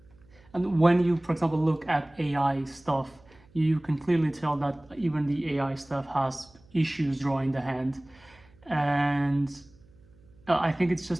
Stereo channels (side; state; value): right; noise; hum, 28 dB below the sound